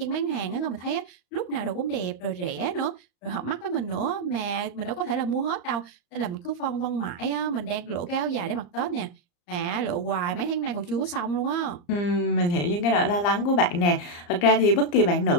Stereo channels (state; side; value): late; right; 34 ms